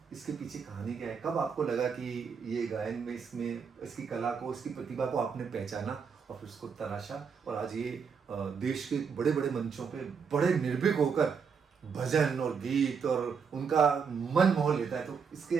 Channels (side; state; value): left; quieter; 6.1 dB